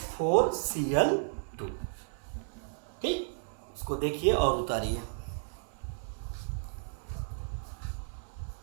ठीक, इसको देखिए और उतारिए।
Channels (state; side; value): silent; left; 56 dB below the other